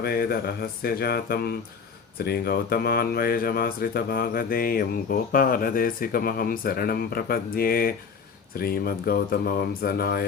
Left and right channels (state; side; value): quieter; right; 5.9 dB